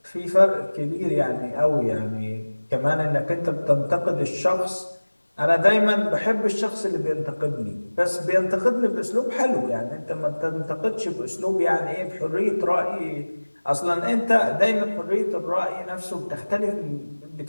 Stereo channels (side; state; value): both; inverted; correlation -1.00